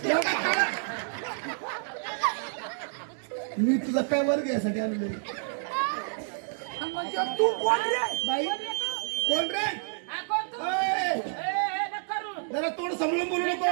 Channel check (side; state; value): left; silent; digital silence